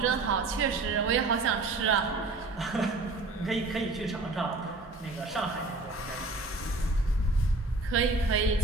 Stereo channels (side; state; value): left; quieter; 3.2 dB